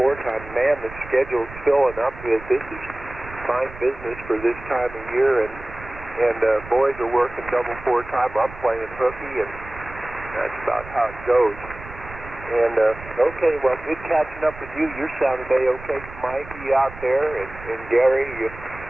Man, the schedule's filling up. This is fine business for this time of year, and boys are working double four-time. I'm playing hooky, and that's about how it goes. And, okay, well, good catching up with you. You're sounding A-OK. Mikey out there, and Gary,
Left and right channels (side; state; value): right; noise; rumble, 15 dB below the sound